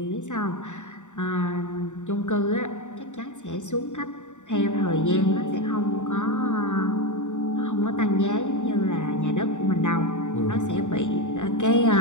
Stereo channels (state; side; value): late; right; 0.85 ms